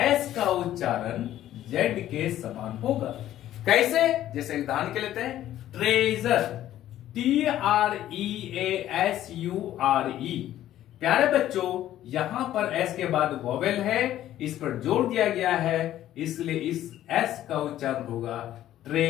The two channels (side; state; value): right; quieter; 12.8 dB